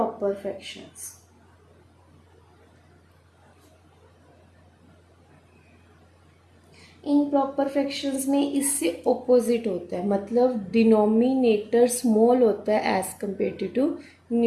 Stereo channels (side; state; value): both; identical; correlation 1.00